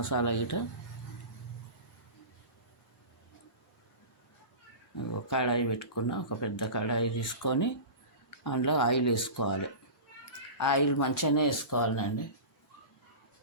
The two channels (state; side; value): late; right; 1.8 ms